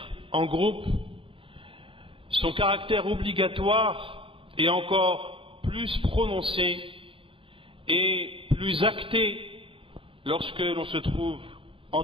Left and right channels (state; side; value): late; left; 0.26 ms